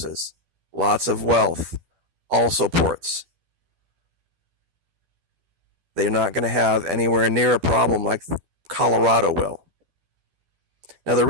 Lots of wealth. Also ports. They're not going to have anywhere near a problem like Colorado will. Now, the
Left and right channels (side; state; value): left; late; 12 ms